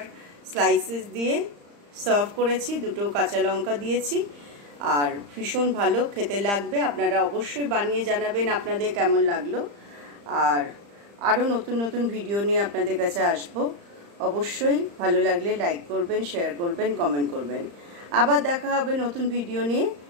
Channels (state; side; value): late; left; 35 ms